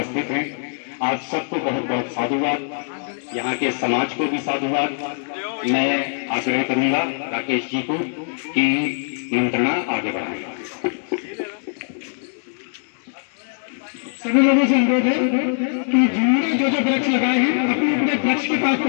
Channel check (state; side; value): silent; right; digital silence